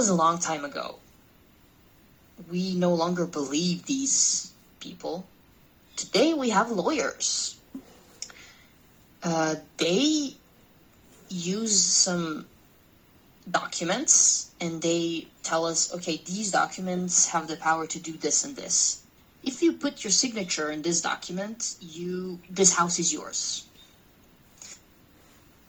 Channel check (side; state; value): both; identical; correlation 1.00